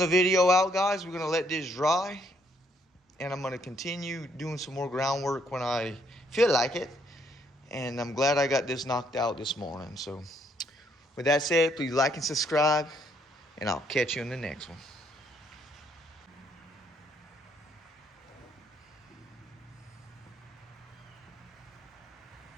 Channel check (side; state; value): both; normal; correlation 0.70